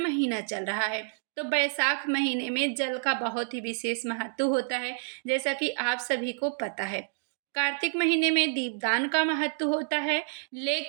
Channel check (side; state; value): left; silent; digital silence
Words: चल रहा है, तो बैसाख महीने में जल का बहुत ही विशेष महत्व होता है, जैसा कि आप सभी को पता है। कार्तिक महीने में दीपदान का महत्व होता है,